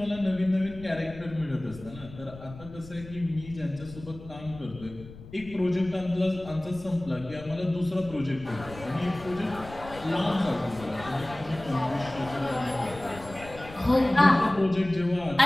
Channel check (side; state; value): left; noise; rumble, 16 dB below the sound